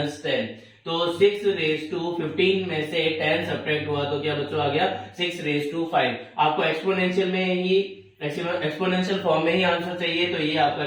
10। तो 6 रेज टू 15 में से 10 सब्ट्रैक्ट हुआ तो क्या बच्चों आ गया 6 रेज टू 5। आपको एक्सपोनेंशियल में ही एक्सपोनेंशियल फॉर्म में ही आंसर चाहिए, तो ये आपका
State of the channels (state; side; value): identical; both; correlation 1.00